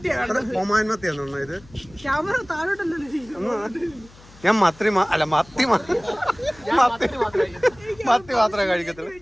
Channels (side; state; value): left; noise; hum, 24 dB below the sound